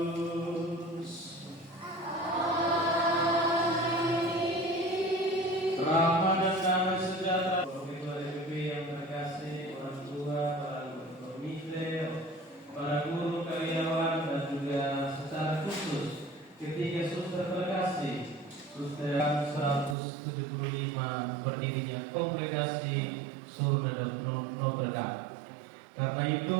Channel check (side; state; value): left; drops out; at 20.0 s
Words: Rahmat dan damai sejahtera bagi PBB yang terkasih, orang tua, para komite, para guru karyawan, dan juga secara khusus ketiga suster terkasih, suster 175 berdirinya Kongregasi Surga dan Notre Dame. Karena